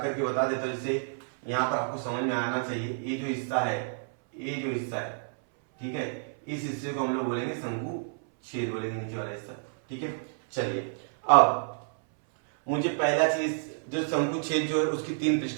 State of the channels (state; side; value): silent; left; 58 dB below the other